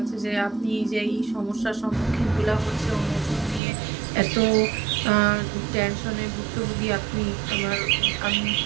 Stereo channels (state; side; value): drops out; left; at 3.6 s